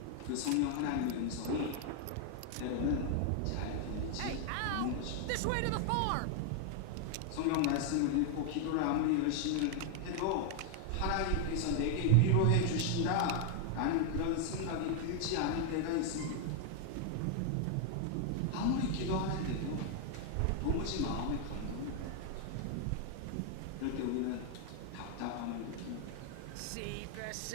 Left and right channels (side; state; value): both; different; correlation 0.00